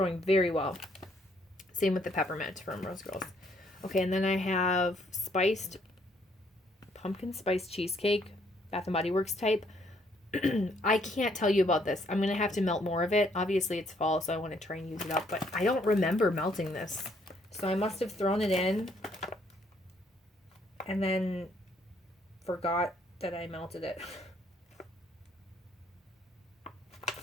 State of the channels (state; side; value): normal; both; correlation 0.68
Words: very well. Same with the peppermint from Rose Girls. Okay, and then I have pumpkin spice cheesecake, Bath and Body Works type. I can't tell you about this. I'm going to have to melt more of it. Obviously, it's fall, so I want to try and use it up, but I don't remember melting this. So I must have thrown it in and then forgot that I melted it.